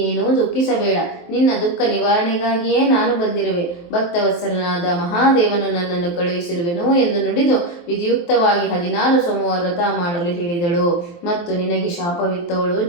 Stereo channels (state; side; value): late; right; 23 ms